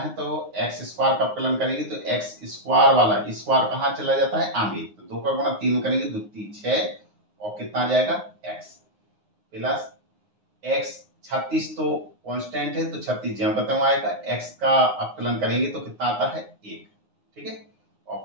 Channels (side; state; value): left; late; 9.6 ms